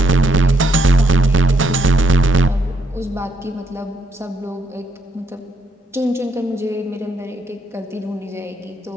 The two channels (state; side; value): normal; both; correlation 0.75